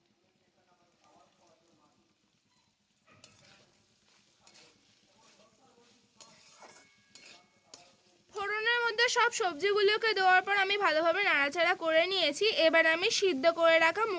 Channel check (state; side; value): identical; both; correlation 1.00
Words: ফোড়নের মধ্যে সব সবজিগুলোকে দেওয়ার পর আমি ভালোভাবে নাড়াচাড়া করে নিয়েছি। এবার আমি সিদ্ধ করে রাখা